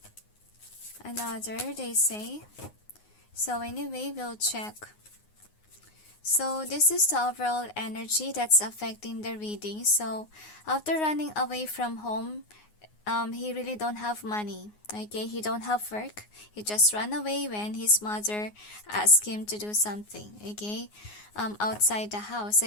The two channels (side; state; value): right; late; 9.6 ms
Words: Another, they say. So anyway, we'll check. So this is the overall energy that's affecting the reading. So after running away from home, he really don't have money. Okay, he don't have work. He just ran away when his mother asked him to do something. Okay, outside the house.